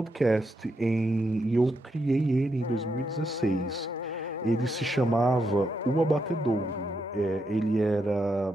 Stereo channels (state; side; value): normal; both; correlation 0.82